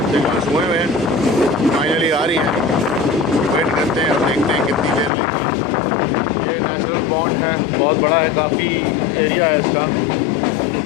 सिग्नल्स हुए हुए हैं, फाइनली आ रही है। वेट करते हैं और देखते हैं कितनी देर लगती है। ये नेचुरल पॉन्ड है, बहुत बड़ा है, काफ़ी एरिया है इसका,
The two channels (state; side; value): drops out; right; at 5.1 s